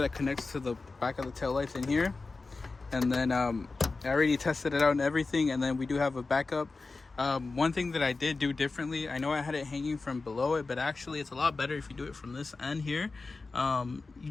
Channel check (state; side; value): quieter; right; 3.8 dB